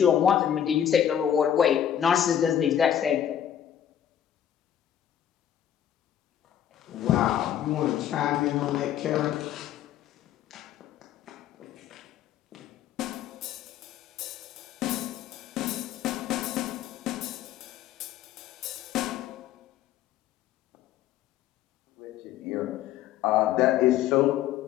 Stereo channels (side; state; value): right; quieter; 10.2 dB